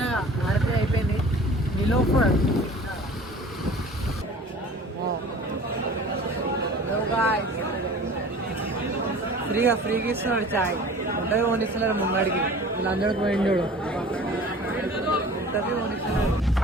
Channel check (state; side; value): normal; both; correlation 0.43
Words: ఆర్పీ అయిపోయింది నిలోఫర్ ఫ్రీగా ఇస్తున్నాడు చాయ్ ఉంటుంది కొనిస్తున్నారు ముంగడికి వీళ్ళందరికీ పోయింది చూడు ఉంటుంది కొనిస్తున్నారు